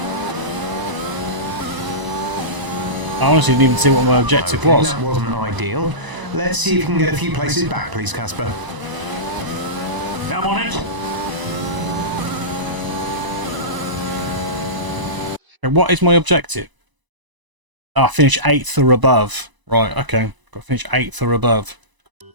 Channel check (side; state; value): left; late; 1.0 ms